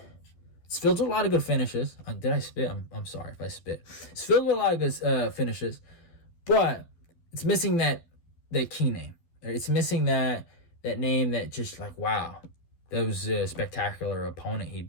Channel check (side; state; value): right; late; 12 ms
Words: filled with a lot of good finishes. Did I spit? I'm sorry if I spit. It's filled with a lot of good finishes, but it's missing that key name. It's missing that name that just like, wow, that was a spectacular opponent he